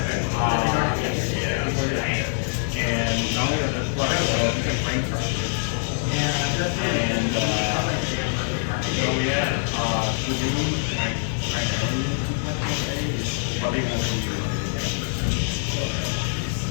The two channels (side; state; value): right; silent; 62 dB below the other